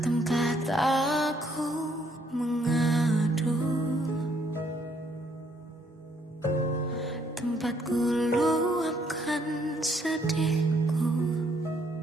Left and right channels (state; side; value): normal; both; correlation 0.68